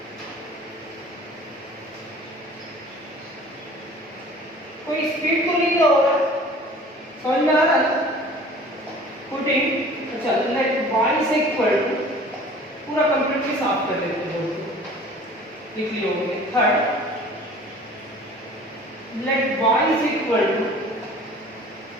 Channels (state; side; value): normal; both; correlation 0.46